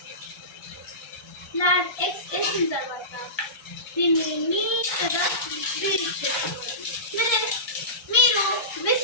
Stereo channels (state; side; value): late; right; 1.2 ms